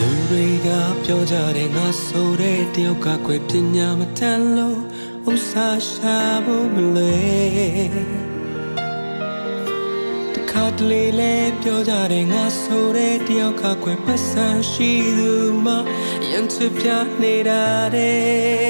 လူတွေကပြောကြတယ်ငါဆိုတဲ့တယောက်ကခွဲပညာမတန်လို့ဥစားရှာဖို့မလွယ်တခါတလေလဲပြောကြတယ်ငါဆိုတဲ့တယောက်ကခွဲပတ်စံရှိသူမှရန်ချပြနေတာတဲ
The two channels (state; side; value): inverted; both; correlation -1.00